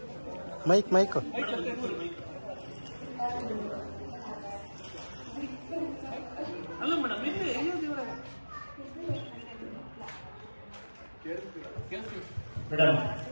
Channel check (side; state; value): both; inverted; correlation -1.00